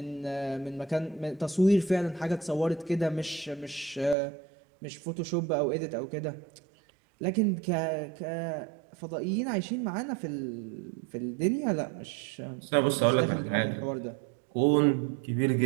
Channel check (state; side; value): drops out; left; at 4.2 s